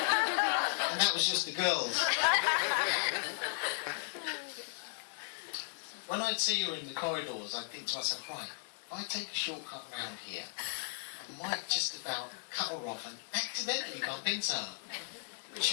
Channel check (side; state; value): right; silent; digital silence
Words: that was just the girls. When I'd see her in the corridors, I'd think to myself, right, if I take a shortcut round here, I might just about cut her off and accidentally bump into her. But